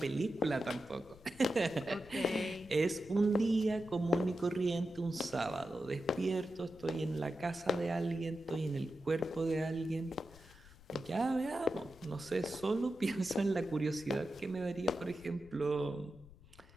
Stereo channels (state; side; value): noise; left; rumble, 22 dB below the sound